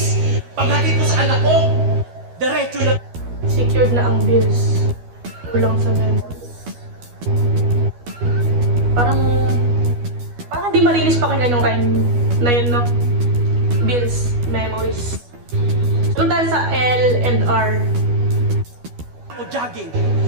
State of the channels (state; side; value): late; left; 12 ms